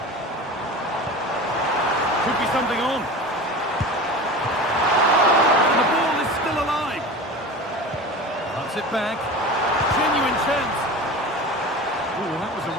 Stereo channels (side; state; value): both; normal; correlation 0.33